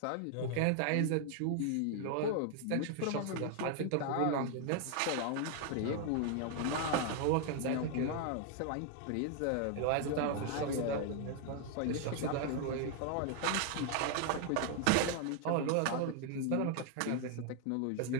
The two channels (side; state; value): both; different; correlation 0.00